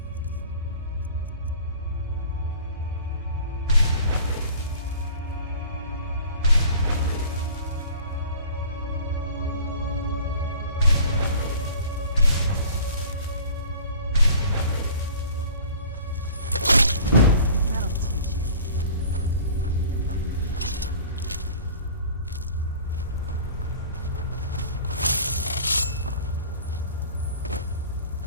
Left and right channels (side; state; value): both; inverted; correlation -0.46